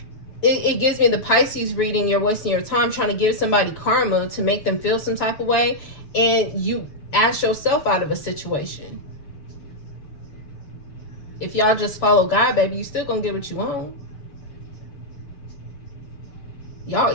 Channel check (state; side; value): late; right; 6.8 ms